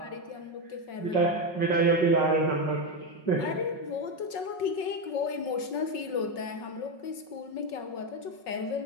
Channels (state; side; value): late; right; 5.5 ms